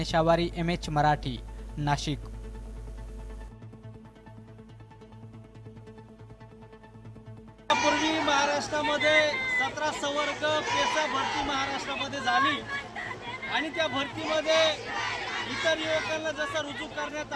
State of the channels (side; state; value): both; identical; correlation 1.00